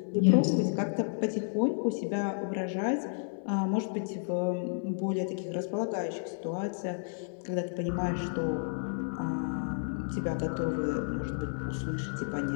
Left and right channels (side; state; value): right; silent; 57 dB below the other